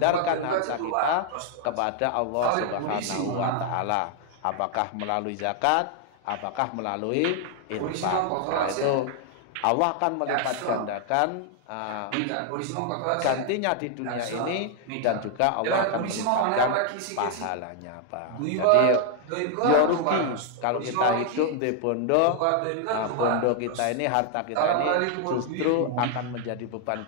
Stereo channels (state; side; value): different; both; correlation 0.00